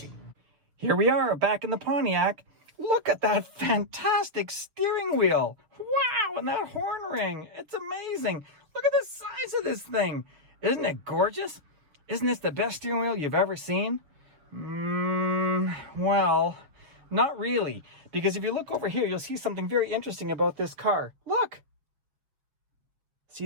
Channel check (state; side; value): late; left; 7.1 ms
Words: Here we are back in the Pontiac. Look at that fantastic steering wheel. Wow, and that horn ring. It's amazing. Look at the size of this thing. Isn't it gorgeous? Isn't this the best steering wheel you've ever seen? Well, not really. Because if you look over here, you'll see something very interesting about this car. Look.